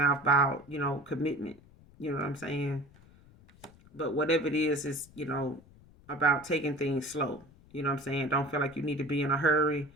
about commitment. You know what I'm saying? But whatever it is about taking things slow. You know what I'm saying? Don't feel like you need to be in a hurry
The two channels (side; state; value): left; noise; rumble, 25 dB below the sound